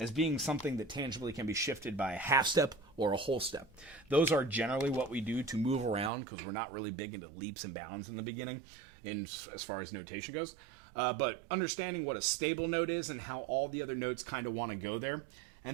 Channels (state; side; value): drops out; left; at 6.1 s